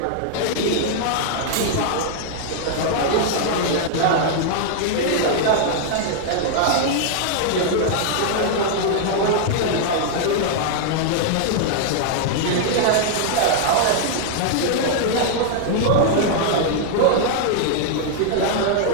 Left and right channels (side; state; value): both; different; correlation -0.01